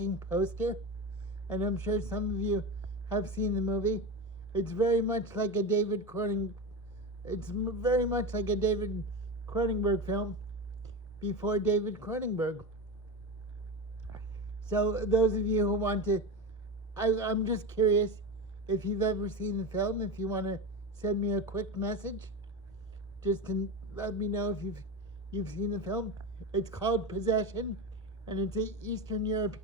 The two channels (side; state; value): both; normal; correlation 0.22